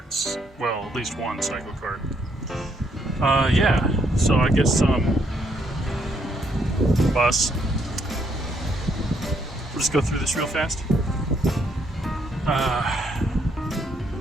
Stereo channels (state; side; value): normal; both; correlation 0.72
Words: Well, at least one Cyclekart. Yeah, so I guess bus. We'll just go through this real fast.